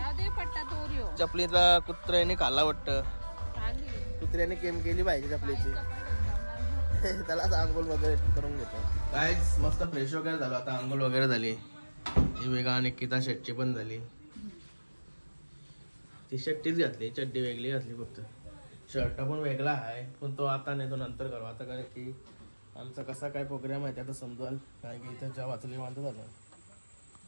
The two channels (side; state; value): both; inverted; correlation -1.00